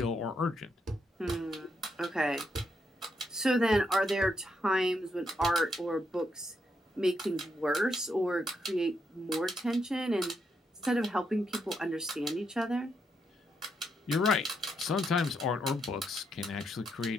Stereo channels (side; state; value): both; normal; correlation 0.79